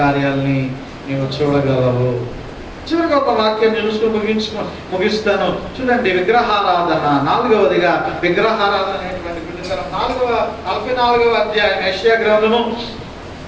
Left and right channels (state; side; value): identical; both; correlation 1.00